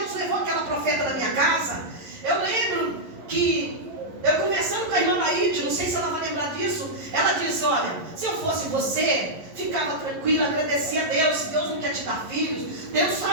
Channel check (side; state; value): left; late; 11 ms